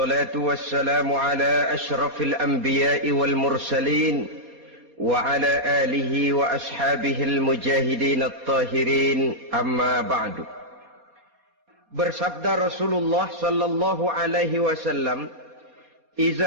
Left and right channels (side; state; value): left; late; 4.3 ms